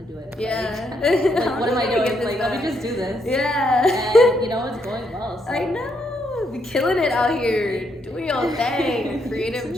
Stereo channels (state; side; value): normal; both; correlation 0.76